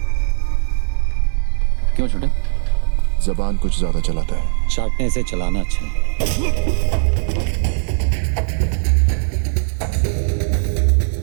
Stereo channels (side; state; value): left; silent; digital silence